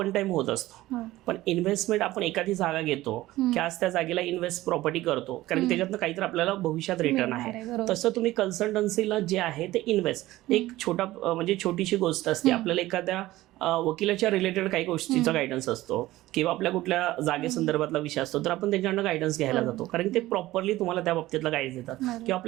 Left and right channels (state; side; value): quieter; left; 16.8 dB